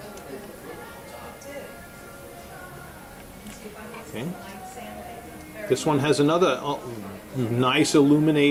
Okay. This one has another nice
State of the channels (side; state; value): both; identical; correlation 1.00